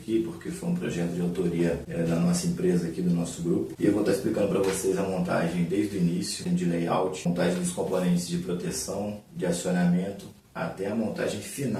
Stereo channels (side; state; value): both; identical; correlation 1.00